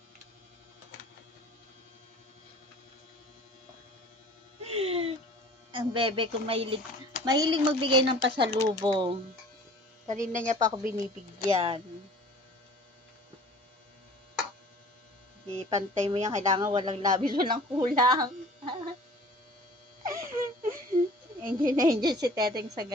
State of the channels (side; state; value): both; normal; correlation 0.46